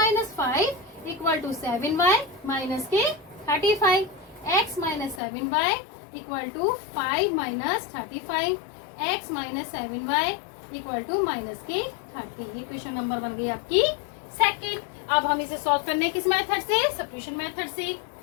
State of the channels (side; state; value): right; drops out; at 5.2 s